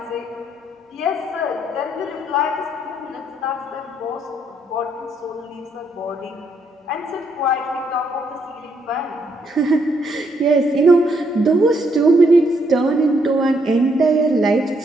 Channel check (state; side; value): normal; both; correlation 0.73